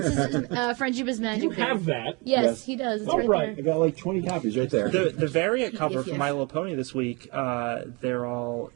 Friendship is Magic. You have that. Yes, Yes. he does. It's Oh, right right. I got like 20 copies right there. the variant cover for yes. My Little Pony this week, they're all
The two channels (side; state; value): left; quieter; 28.8 dB